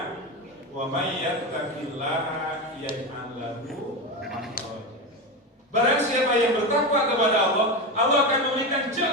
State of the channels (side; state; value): both; normal; correlation 0.18